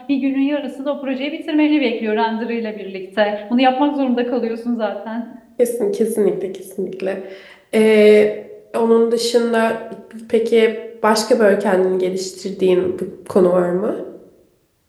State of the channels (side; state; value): both; identical; correlation 1.00